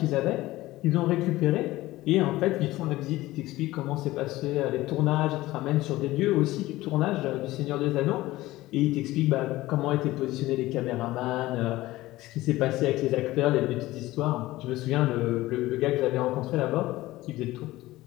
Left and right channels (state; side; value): quieter; right; 17.6 dB